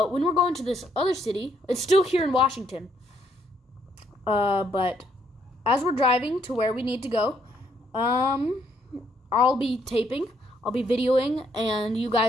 when we're going to this other city, it's still here in Washington. But as we're driving to where we need to go, I'll be taping, I'll be videoing, and you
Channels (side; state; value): both; normal; correlation 0.71